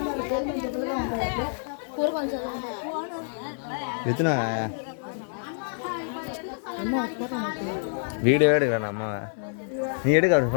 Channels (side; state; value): right; silent; 60 dB below the other